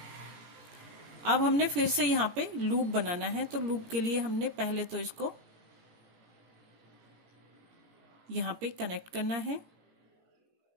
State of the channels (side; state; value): left; late; 17 ms